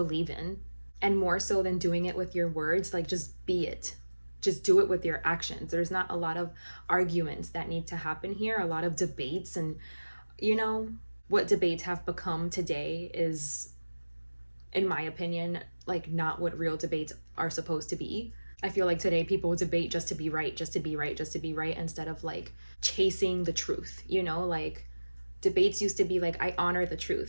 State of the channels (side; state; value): both; inverted; correlation -1.00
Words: in, and more so than doing it with your words, like just be it. Just do it with your actions. There's not a lot of arguments that need to happen here, a lot of debates. And what debates have become today is, in my opinion, like not what real debates are supposed to be. I feel like today people debate just to be right, just to be right, just to be right, instead of like chasing the truth. Like debates used to be like, I honor the